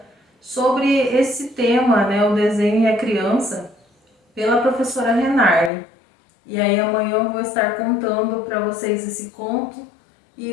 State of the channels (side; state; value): right; drops out; at 5.7 s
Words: sobre esse tema, né, o desenho e a criança, pela professora Renarle. E aí amanhã eu vou estar contando para vocês esse conto e